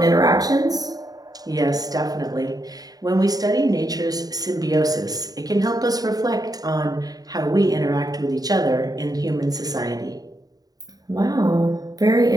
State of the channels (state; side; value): late; left; 0.18 ms